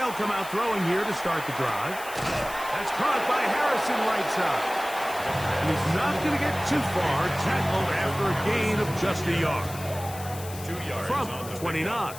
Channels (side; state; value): left; noise; hiss, 14 dB below the sound